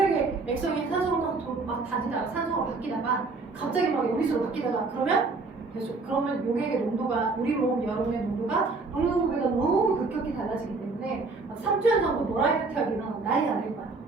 액성이 산소로 막 다지다가 산소가 바뀌다가 갑자기 막 여기서 바뀌다가 그러면 용액의 농도가, 우리 몸 여러분의 농도가 농도가 너무 급격히 달라지기 때문에 3주년 정도 모라이어티하게 일어나면 난리가 날 거야.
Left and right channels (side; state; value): left; quieter; 3.8 dB